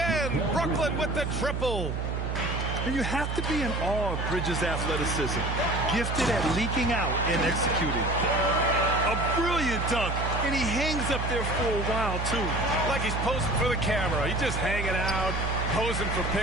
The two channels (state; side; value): noise; right; hum, 2 dB below the sound